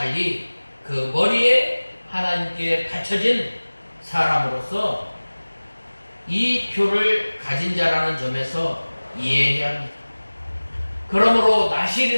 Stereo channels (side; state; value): both; inverted; correlation -1.00